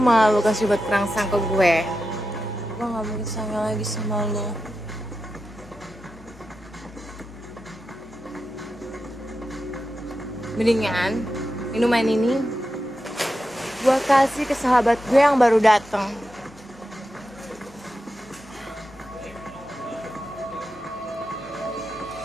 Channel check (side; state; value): both; normal; correlation 0.90